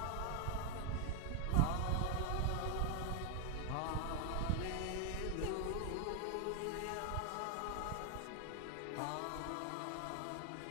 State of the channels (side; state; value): both; different; correlation 0.00